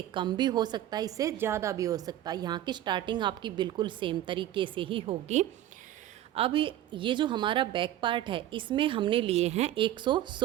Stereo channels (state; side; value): quieter; left; 12.8 dB